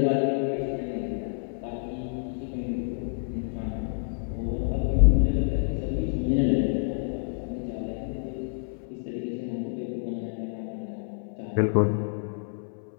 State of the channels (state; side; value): silent; right; 59 dB below the other